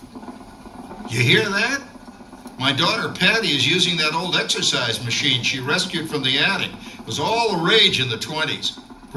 You hear that? My daughter Patty is using that old exercise machine she rescued from the attic. It was all the rage in the 20s.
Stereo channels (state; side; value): identical; both; correlation 1.00